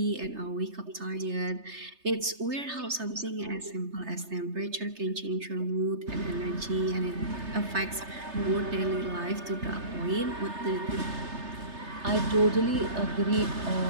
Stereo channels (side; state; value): left; late; 3.3 ms